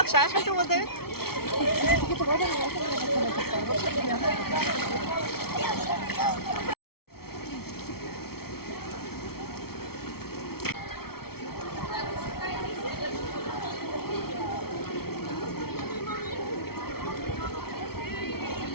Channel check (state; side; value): late; right; 0.94 ms